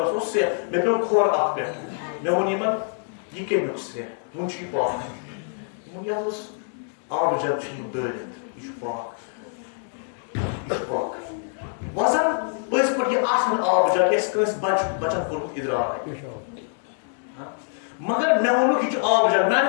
اوس سرٛیٚح مےٚ پیوٚو کھۄر اَتھ پٮ۪ٹھ مےٚ ووٚن یِمن یہِ کَمیُک سرٛیٚح وۄنۍ چھُ یہِ پاک دوٚپُن یہِ حظ اوس آبہٕ جب چھُ یہِ دٲرِتھ یہِ چھُ پاک یہِ چھُ پاک وۄزن پٔزۍ پٲٹھۍ یہِ آسان آبہٕ جب یہِ آسہِ کٲنٛسہِ بچن کوٚرمُت اِدراک مگر مےٚ ووٚنُکھ یہِ چھُ آبہٕ جب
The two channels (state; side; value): silent; right; 62 dB below the other